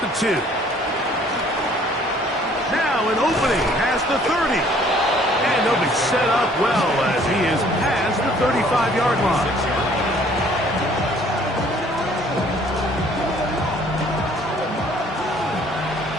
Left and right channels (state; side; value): normal; both; correlation 0.58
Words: the 2. Now an opening past the 30. And they'll be set up well as he is past the 35-yard line.